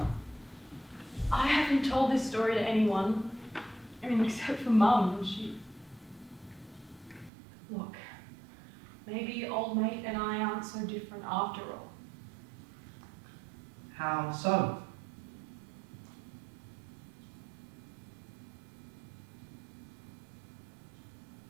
I haven't told this story to anyone. I mean, except for Mum. Look, maybe old mate and I aren't so different after all. How so?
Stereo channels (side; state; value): left; drops out; at 7.3 s